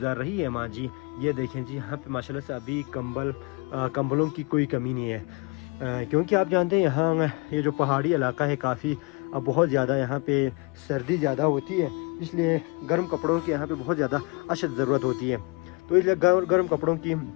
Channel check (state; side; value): quieter; right; 29.4 dB